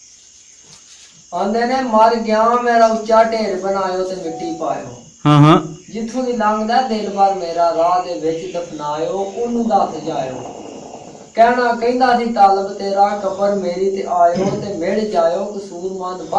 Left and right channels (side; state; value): both; identical; correlation 1.00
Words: ਆਂਦੇ ਨੇ ਮਰ ਗਿਆ ਮੇਰਾ ਉੱਚਾ ਢੇਰ ਬਣਾਇਓ ਤੇ ਮਿੱਟੀ ਪਾਇਓ। ਹਾਂ ਜਿੱਥੋਂ ਦੀ ਲੰਘਦਾ ਦਿਲ ਭਰ ਮੇਰਾ ਰਾਹ ਦੇ ਵਿੱਚ ਦਫਨਾਇਓ ਉਹਨੂੰ ਦੱਸ ਜਾਇਓ। ਕਹਿਣਾ ਕਹਿੰਦਾ ਸੀ ਤਾਲਬ ਤੇਰਾ ਕਬਰ ਮੇਰੀ ਤੇ ਆਇਓ ਤੇ ਮਿਲ ਜਾਇਓ ਕਸੂਰਮੰਦ